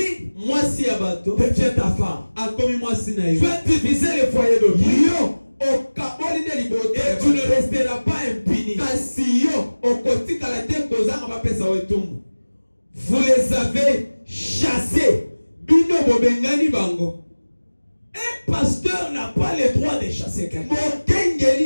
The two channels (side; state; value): both; inverted; correlation -1.00